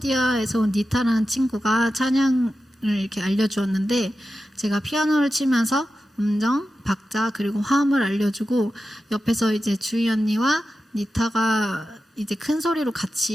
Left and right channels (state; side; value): normal; both; correlation 0.92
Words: 온 니타라는 친구가 찬양을 이렇게 알려주었는데 제가 피아노를 치면서 음정, 박자 그리고 화음을 알려주고 옆에서 이제 주희 언니와 니타가 이제 큰 소리로